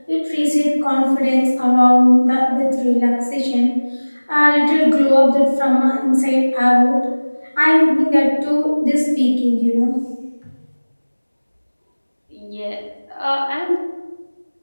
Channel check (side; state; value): both; inverted; correlation -1.00